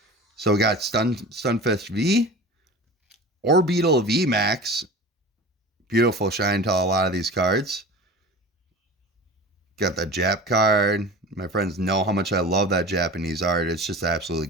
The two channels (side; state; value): both; normal; correlation 0.36